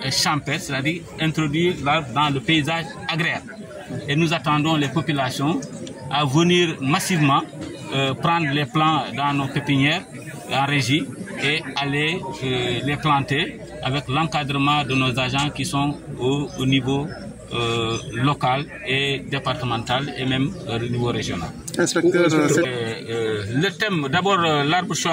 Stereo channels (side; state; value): both; identical; correlation 1.00